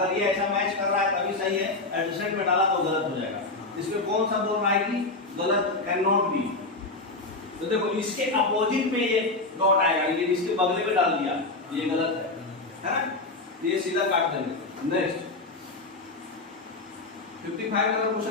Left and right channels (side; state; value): right; quieter; 3.3 dB